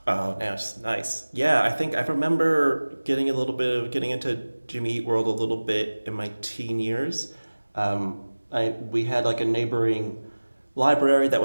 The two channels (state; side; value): inverted; both; correlation -1.00